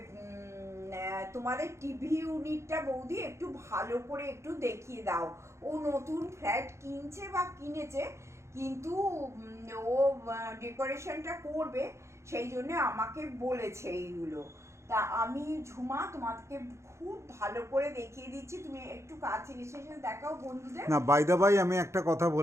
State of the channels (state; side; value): late; left; 0.14 ms